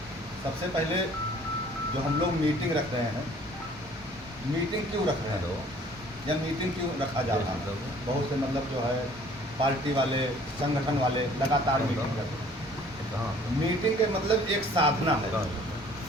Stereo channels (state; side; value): normal; both; correlation 0.54